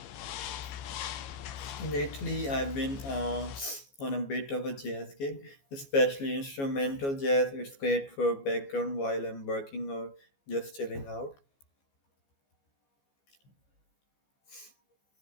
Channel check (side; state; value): right; late; 14 ms